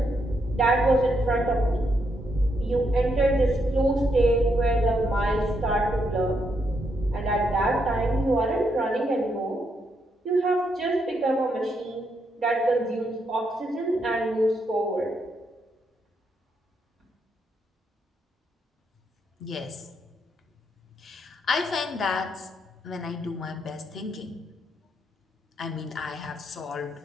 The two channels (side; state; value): both; normal; correlation 0.78